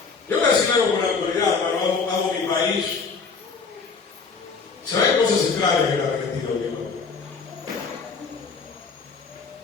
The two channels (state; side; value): quieter; right; 5.0 dB